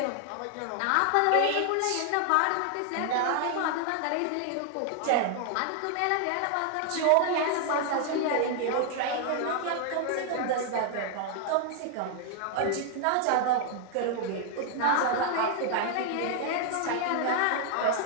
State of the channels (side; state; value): both; different; correlation 0.00